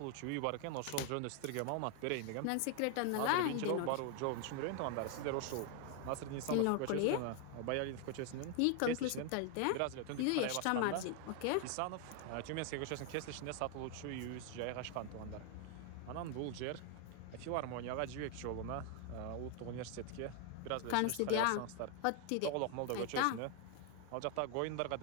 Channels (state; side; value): different; both; correlation 0.00